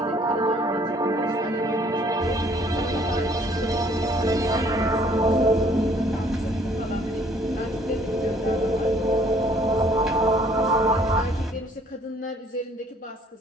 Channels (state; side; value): normal; both; correlation 0.60